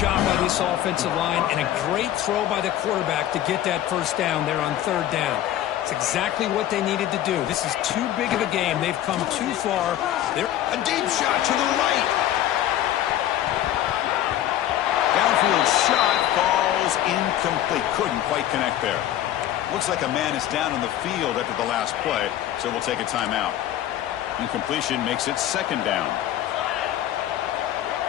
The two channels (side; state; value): right; quieter; 12.4 dB